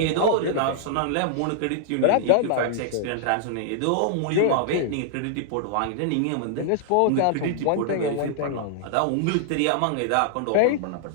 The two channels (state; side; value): different; both; correlation -0.01